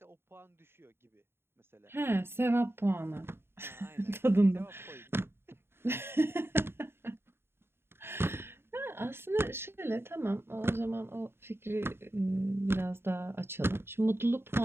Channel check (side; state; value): left; late; 0.11 ms